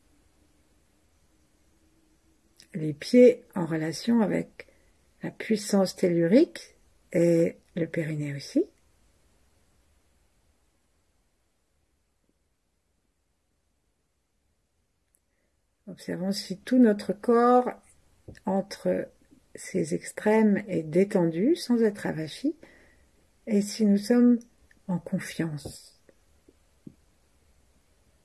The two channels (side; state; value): both; identical; correlation 1.00